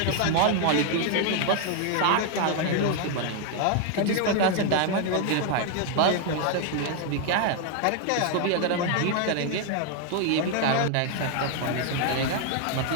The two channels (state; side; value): different; both; correlation 0.00